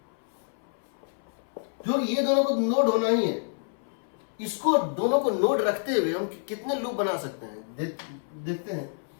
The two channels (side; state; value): right; silent; 59 dB below the other